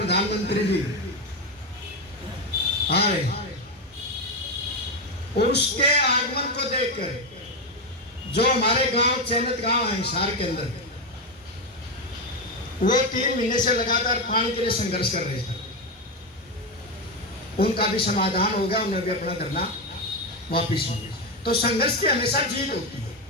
जी आ रहे, और उसके आगमन को देखकर जो हमारे गांव चयनित गांव है हिसार के अंदर, वो 3 महीने से लगातार पानी के लिए संघर्ष कर रहे थे, उनका भी समाधान हो गया, उन्हें भी अपना धरना वापिस हो गया। तो संघर्ष की हमेशा जीत होती है।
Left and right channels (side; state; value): both; normal; correlation 0.10